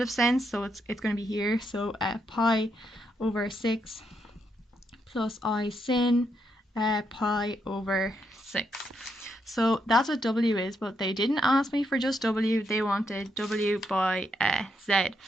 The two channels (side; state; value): both; normal; correlation 0.79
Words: sense, so it's going to be here, so pi over 6 plus I sin pi over 6. So that's what w is, but they didn't ask me for just w, they wanted w by z.